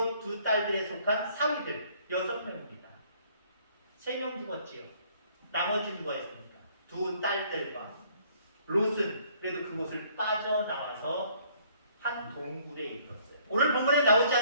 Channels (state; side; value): inverted; both; correlation -0.61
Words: 두 딸들에 속한 사위들 6명입니다. 3명 죽었지요. 나머지 누가 있습니까? 두 딸들과 롯은 그래도 그곳을 빠져나와서 한 동굴에 이르렀어요. 오늘 본문에 나오지